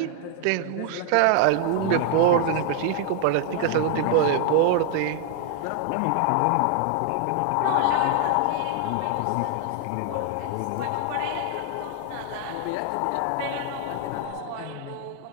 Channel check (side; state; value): both; different; correlation 0.00